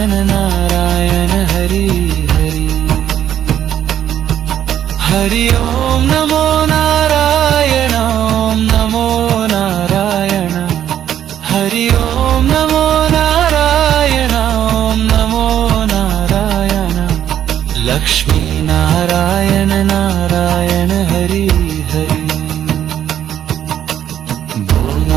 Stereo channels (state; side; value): quieter; left; 10.5 dB